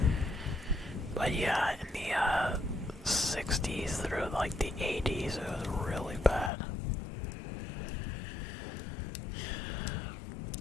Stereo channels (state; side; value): drops out; right; at 6.5 s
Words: But yeah, in the 60s through like the 80s, it was really bad.